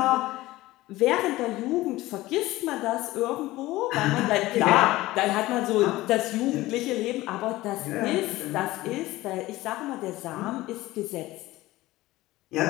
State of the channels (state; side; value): quieter; right; 17.9 dB